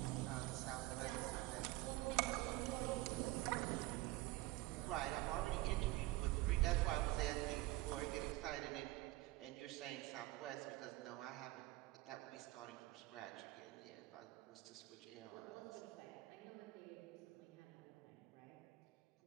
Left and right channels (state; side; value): quieter; left; 18.7 dB